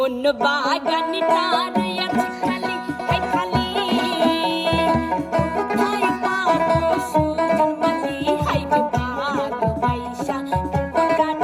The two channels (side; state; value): both; identical; correlation 1.00